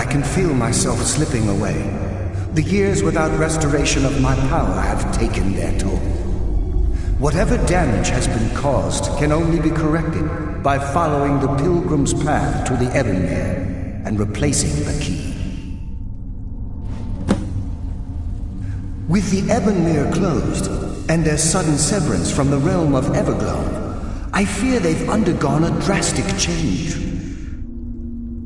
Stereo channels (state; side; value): identical; both; correlation 1.00